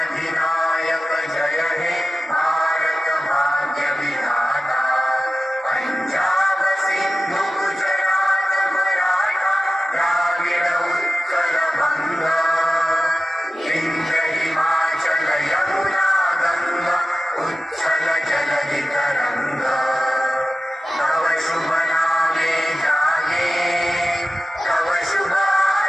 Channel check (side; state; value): both; normal; correlation 0.95